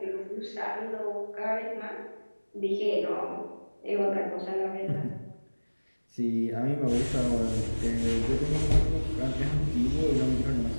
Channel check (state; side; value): inverted; both; correlation -1.00